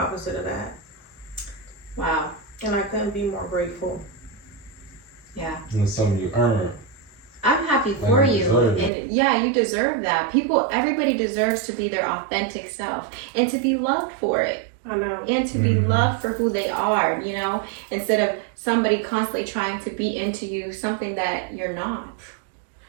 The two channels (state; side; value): drops out; left; at 8.9 s